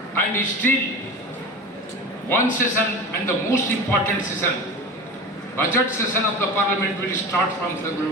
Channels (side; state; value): both; normal; correlation 0.30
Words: and still one session, and the most important session, budget session of the Parliament, will start from